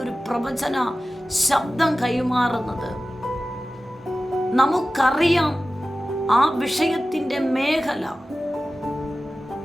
പ്രവചന ശബ്ദം കൈമാറുന്നത് നമുക്കറിയാം ആ വിഷയത്തിൻ്റെ മേഖല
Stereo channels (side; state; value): both; normal; correlation 0.95